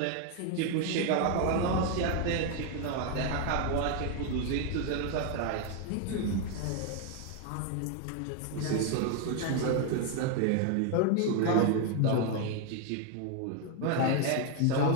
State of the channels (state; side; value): different; both; correlation 0.01